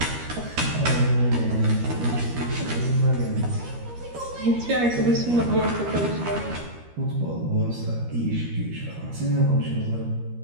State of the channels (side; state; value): left; late; 13 ms